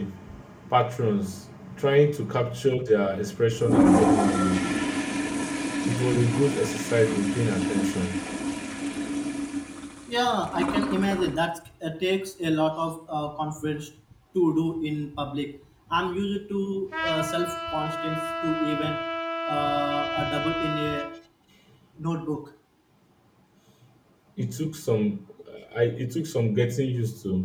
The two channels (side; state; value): both; identical; correlation 1.00